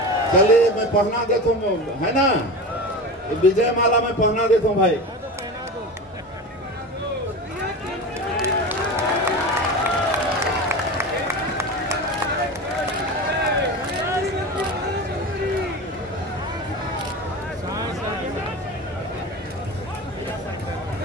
चलिए मैं पहना देता हूँ, है ना? विजय माला में पहना देता हूँ भाई।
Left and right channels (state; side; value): normal; both; correlation 0.28